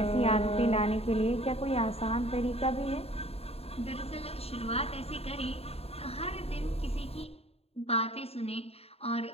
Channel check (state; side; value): late; right; 0.29 ms